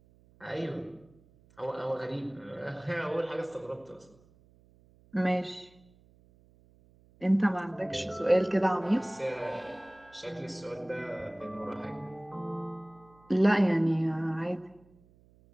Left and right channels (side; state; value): right; noise; hum, 29 dB below the sound